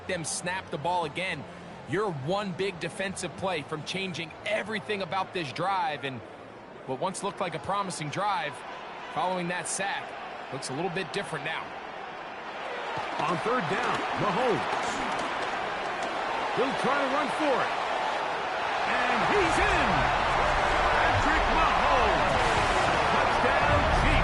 them snap the ball again. You're one big defensive play from changing everything about this drive. And what once looked like a promising drive, following that sack, looks a little bit different now. On 3rd down, Mahomes. He'll try to run for it. And he's in. Patrick Mahomes. Touchdown,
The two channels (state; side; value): identical; both; correlation 1.00